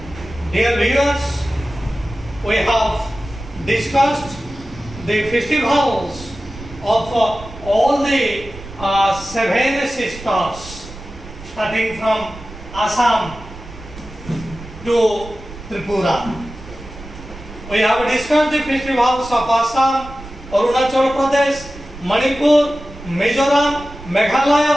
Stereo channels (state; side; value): noise; right; rumble, 15 dB below the sound